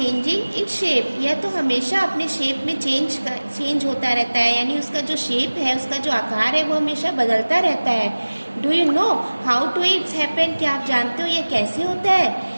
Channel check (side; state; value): both; inverted; correlation -1.00